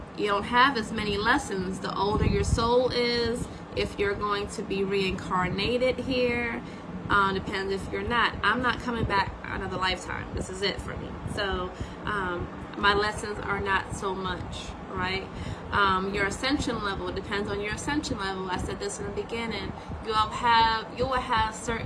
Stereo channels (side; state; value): both; identical; correlation 1.00